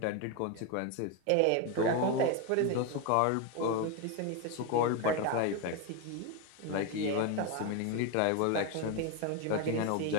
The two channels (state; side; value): different; both; correlation 0.02